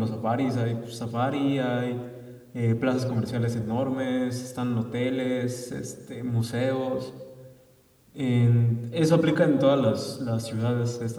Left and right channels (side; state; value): both; identical; correlation 1.00